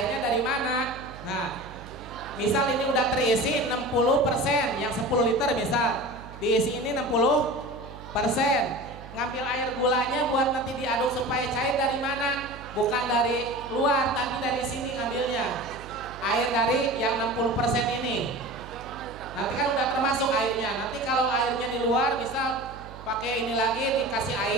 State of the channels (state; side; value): noise; right; hum, 15 dB below the sound